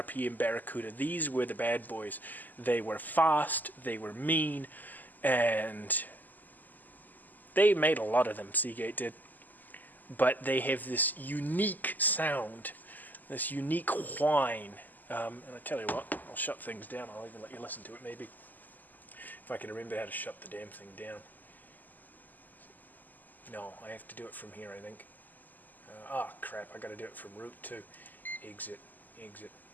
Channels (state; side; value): late; right; 0.084 ms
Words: Barracuda. These were the bad boys. They were fast, they were mean, and they made a lot of them, Seagate did. But they have this unique sound, this unique whine. And I tell you what, I'll shut things down. I'll even let you listen to it maybe. If I can remember how to shut the damn thing down. No, I have to do it from here, I think. Crap, I got to do it from root too. Exit.